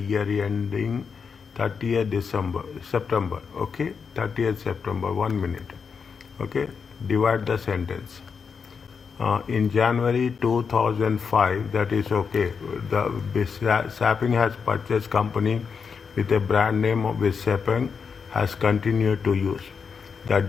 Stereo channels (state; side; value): quieter; right; 5.9 dB